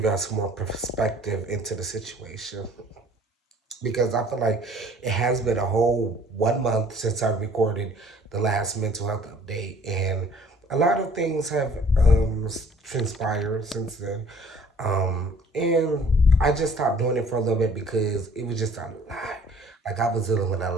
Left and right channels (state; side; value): normal; both; correlation 0.54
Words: y'all some more perspective into the situation because I feel like it has been a whole 1 month since I recorded the last mental health update, and a lot of things have transpired since then. And I just stopped doing it for a little bit because it was just a lot. Like I was dealing with a